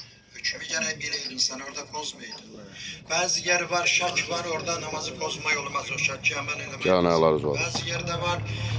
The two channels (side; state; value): both; identical; correlation 1.00